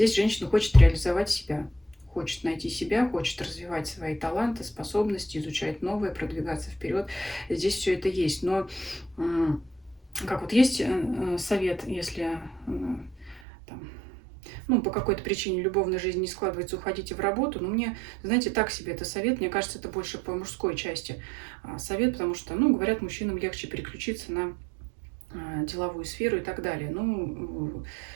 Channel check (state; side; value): drops out; left; at 13.4 s